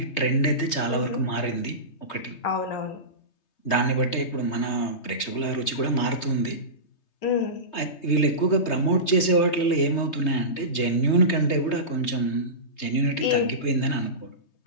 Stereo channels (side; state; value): right; late; 3.2 ms